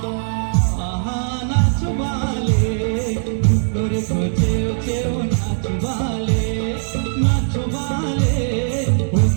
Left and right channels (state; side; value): silent; left; digital silence